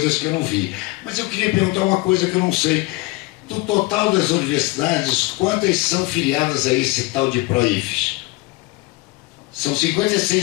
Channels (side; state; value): right; quieter; 21.8 dB